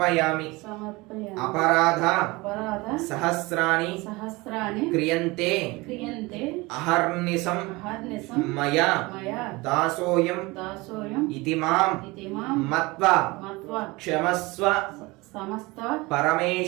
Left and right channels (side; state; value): left; quieter; 23.2 dB